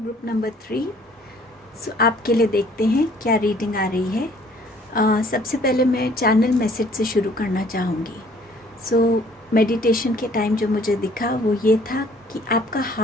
number 3। सो आपके लिए देखते हैं क्या रीडिंग आ रही है। सबसे पहले मैं चैनल मैसेज से शुरू करना चाहूँगी। मेडिटेशन के टाइम जो मुझे दिखा वो ये था कि आपका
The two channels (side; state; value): both; normal; correlation 0.58